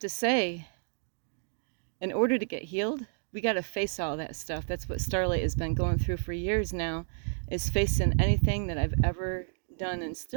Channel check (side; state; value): left; silent; digital silence